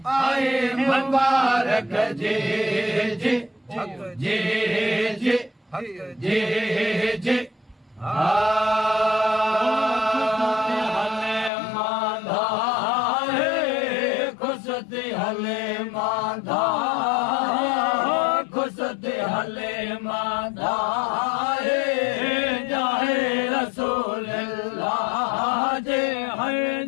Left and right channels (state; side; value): drops out; right; at 11.5 s